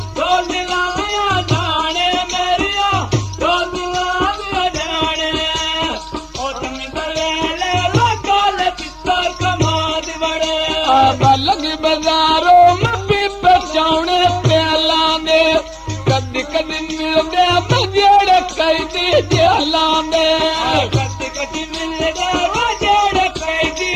डोल दिलाया जाने मेरिया डोल दिलाया जाने ओ तुम दलेले लगल चित्तर कमाद बड़े लगी बाजारों में भी पहुंचाने प्याला ने कदी कदी मिलदे मजेड़े कैदी जेला ने कदी कदी मिलदे मजेड़े कैदी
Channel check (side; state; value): both; identical; correlation 1.00